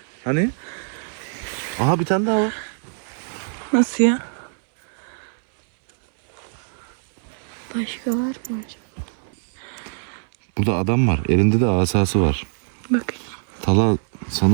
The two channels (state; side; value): silent; left; digital silence